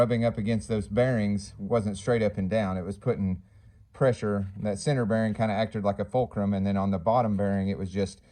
up against those bearings wasn't straight up and down. It was putting pressure. That center bearing kind of acted like a fulcrum, and then on the bottom bearing it was just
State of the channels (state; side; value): identical; both; correlation 1.00